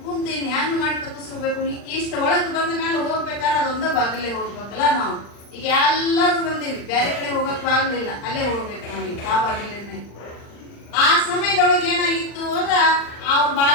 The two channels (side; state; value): right; late; 39 ms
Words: ಕುಂತೀನಿ ಹೆಂಗ್ ಮಾಡಿ ತಪ್ಪಿಸ್ಕೋಬೇಕು, ಇಷ್ಟ ಒಳಗೆ ಬಂದ ಮೇಲೆ ಹೋಗ್ಬೇಕಾದ್ರೆ ಅದೊಂದ ಬಾಗಿಲೇ ಹೋಗ್ಬೇಕಲ್ಲ ನಾವು. ಈಗ ಎಲ್ಲರೂ ಬಂದೀವಿ, ಬೇರೆ ಕಡೆ ಹೋಗಕ್ ಬಾಗ್ಲಿಲ್ಲ, ಅಲ್ಲೇ ಹೋಗ್ಬೇಕು ನಾವೀಗ ಆ ಬಾಗಿಲೇ. ಆ ಸಮಯದೊಳಗೆ ಏನಾಗಿತ್ತು ಅಂದ್ರ, ಅವ್ರ